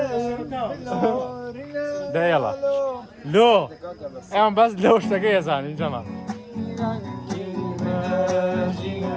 ده يلا لو اعمل بس لو اشتكي يا زلمه جماعه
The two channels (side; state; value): both; identical; correlation 1.00